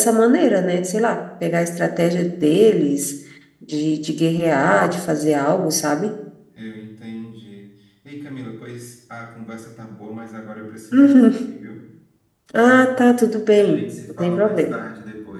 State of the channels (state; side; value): identical; both; correlation 1.00